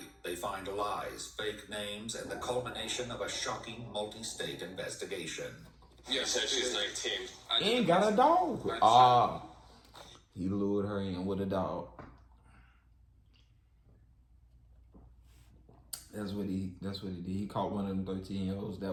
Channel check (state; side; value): identical; both; correlation 1.00